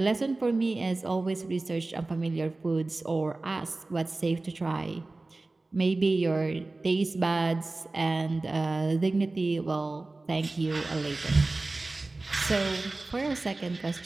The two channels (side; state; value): left; quieter; 3.2 dB